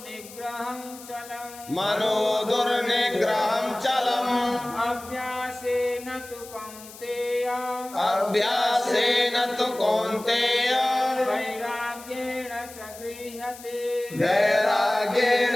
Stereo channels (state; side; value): noise; left; hiss, 17 dB below the sound